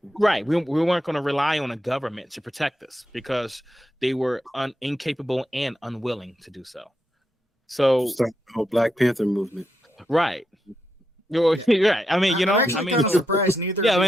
right, we weren't going to rely on a government to protect us because they were incapable and unwilling to do so. So, Start the whole Black Panther movement. right, you're right. I mean, you know, I'm actually I mean, kind of surprised neither. Yeah, of I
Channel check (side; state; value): both; normal; correlation 0.84